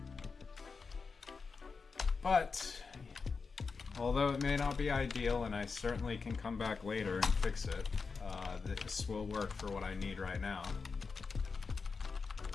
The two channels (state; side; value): quieter; right; 4.8 dB